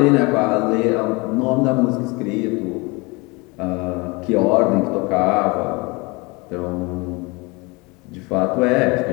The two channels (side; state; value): right; quieter; 26.6 dB